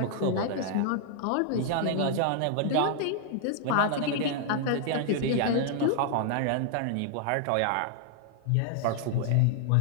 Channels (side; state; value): both; different; correlation 0.00